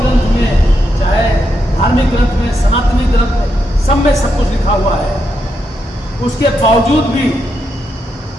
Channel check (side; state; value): both; normal; correlation 0.82